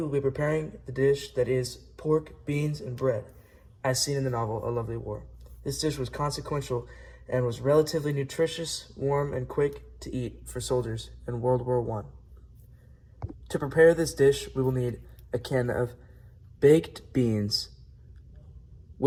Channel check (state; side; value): identical; both; correlation 1.00